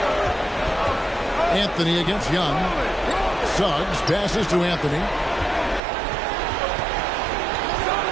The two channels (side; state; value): left; drops out; at 5.8 s